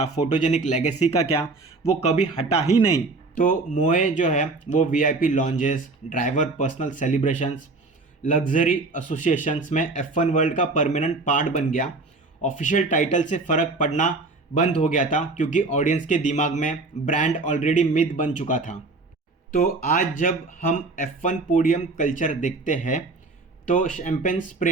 फोटोजेनिक लेगेसी का क्या, वो कभी हटा ही नहीं। तो मोए जो है वो VIP lounges, driver personal celebrations, luxury associations में F1 वर्ल्ड का परमानेंट पार्ट बन गया। ऑफिशियल टाइटल से फ़र्क पड़ना बंद हो गया था क्योंकि ऑडियंस के दिमाग में ब्रांड ऑलरेडी मिथ बन चुका था। तो आज जब हम F1 पोडियम कल्चर देखते हैं तो शैम्पेन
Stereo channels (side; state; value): left; quieter; 3.5 dB